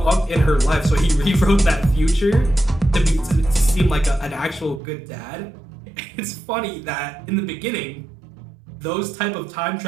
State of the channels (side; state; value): left; drops out; at 4.8 s